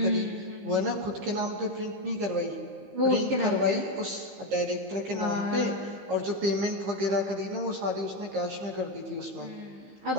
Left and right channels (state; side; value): late; left; 15 ms